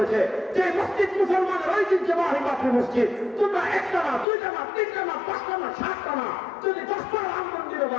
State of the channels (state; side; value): drops out; right; at 4.2 s